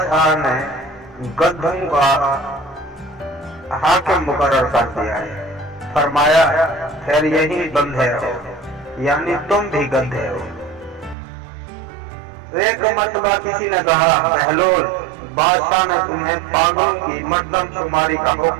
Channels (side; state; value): left; drops out; at 11.2 s